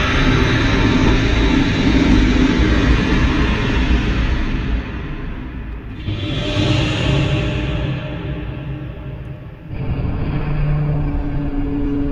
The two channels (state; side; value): identical; both; correlation 1.00